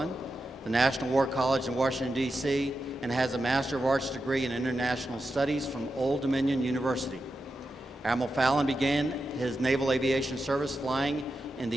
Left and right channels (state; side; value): normal; both; correlation 0.89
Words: the National War College in Washington, D.C., and has a Master of Arts degree in International Studies from Old Dominion University. Admiral Fallon began his naval aviation service flying in